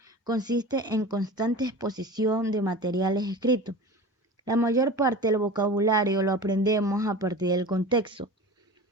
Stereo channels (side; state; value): both; normal; correlation 0.34